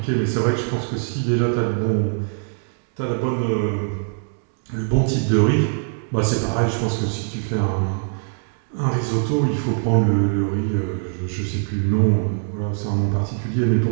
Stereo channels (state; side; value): silent; left; 64 dB below the other